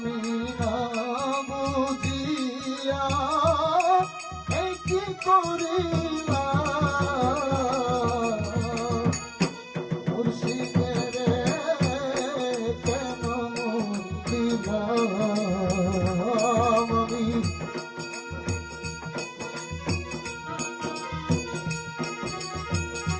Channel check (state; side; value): identical; both; correlation 1.00